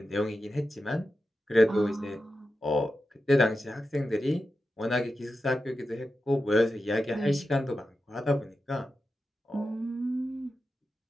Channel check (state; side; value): normal; both; correlation 0.91